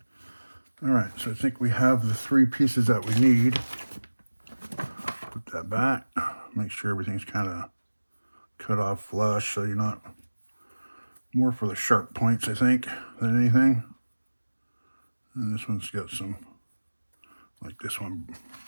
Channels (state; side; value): inverted; both; correlation -1.00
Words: all right, so I think we have the 3 pieces that we need. Put that back. Make sure everything's kind of cut off flush, so you're not, more for the sharp points, I think, than anything. And this one's got some, like this one